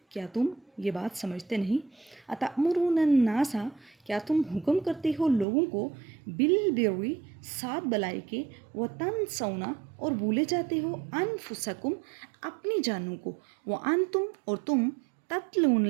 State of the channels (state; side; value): drops out; left; at 5.5 s